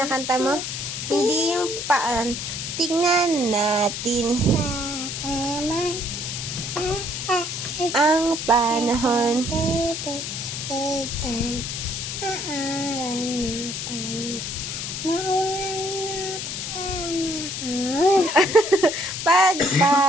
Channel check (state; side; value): noise; left; hiss, 5 dB below the sound